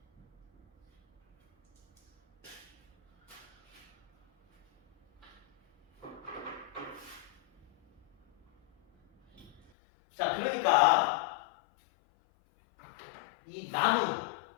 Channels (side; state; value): right; drops out; at 9.7 s